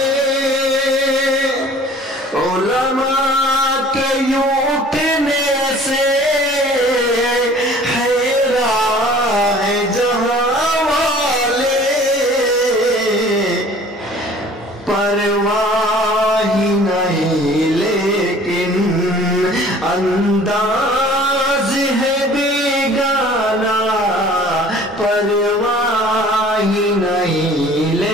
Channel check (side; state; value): both; normal; correlation 0.50